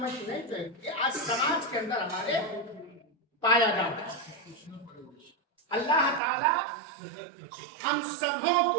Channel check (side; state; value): left; drops out; at 6.2 s